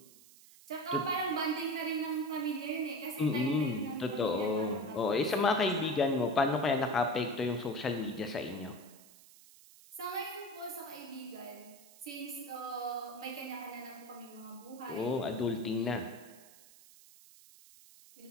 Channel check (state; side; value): noise; right; hiss, 22 dB below the sound